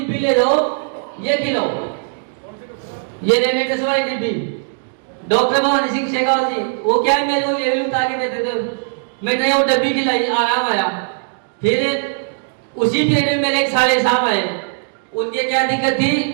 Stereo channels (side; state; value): left; silent; digital silence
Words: ले जाओ, ये खिलाओ, ये रेनेटस वाली डिब्बी। डॉक्टर भवानी सिंह शेखावत जी वो क्या है मेरे को लेवल उठा के देते थे, मैंने वो डब्बी खिलाई, आराम आया। फिर उसी पीरियड में मेरे एक साले साहब आए, उनके क्या दिक्कत थी,